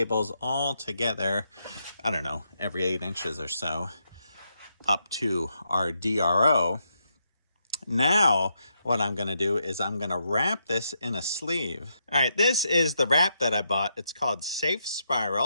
all together, I don't know, every 8 inches or so, up to our DRO. Now, what I'm going to do is I'm going to wrap this in a sleeve. All right, this is the wrap that I bought. It's called Safe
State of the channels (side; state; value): both; inverted; correlation -0.80